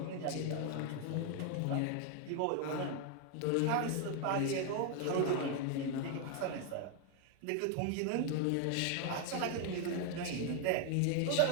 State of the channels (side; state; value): both; different; correlation 0.01